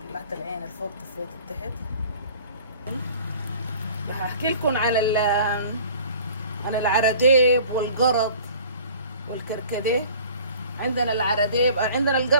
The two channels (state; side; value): inverted; both; correlation -0.47